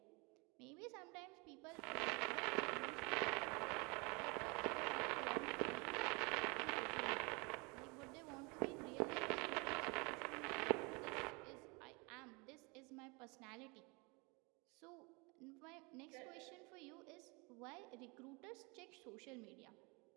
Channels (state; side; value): quieter; left; 28.7 dB